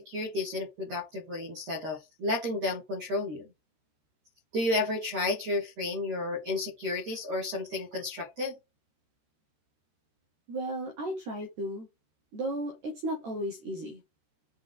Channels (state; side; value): late; left; 13 ms